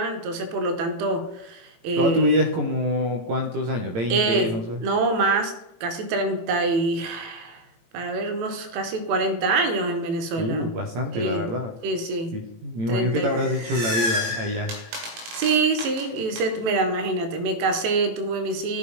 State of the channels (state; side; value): late; left; 18 ms